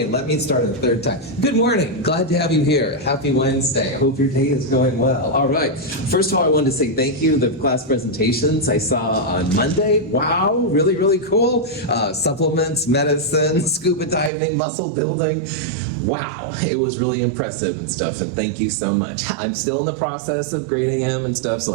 let me start a third time. Good morning. Glad to have you here. Happy Wednesday. I hope your day is going well. All right. First of all, I wanted to say thank you. The class presentations I saw on Monday. Wow. Really, really cool. Supplements, medicine, scuba diving, muscle building. Wow. It was really impressive and stuff, and thank you so much. I'm still in the process of grading them and stuff, so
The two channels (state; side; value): drops out; left; at 14.3 s